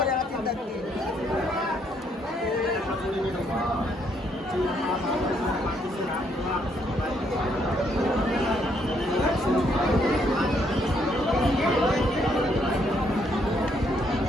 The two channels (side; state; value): both; normal; correlation 0.71